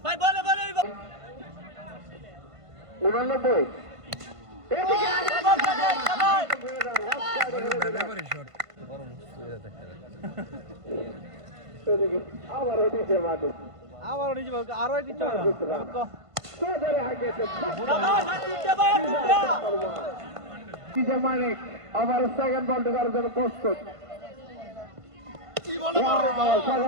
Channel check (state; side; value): late; left; 1.5 ms